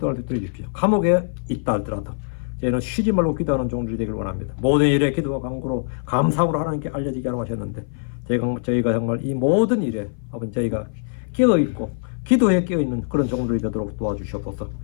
수 있도록 해주십시오. 감옥에 있다 할지라도 저희는 쉬지 말고 기도하는 종들이 되기를 원합니다. 모든 일에 기도와 간구로 감사함으로 하나님께 알려지게 하라고 하셨는데 저희가 정말 이 모든 일에 아버지 저희가 깨어있고 기도에 깨어있는 그런 종들이 되도록 도와주시옵소서.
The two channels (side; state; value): right; silent; 57 dB below the other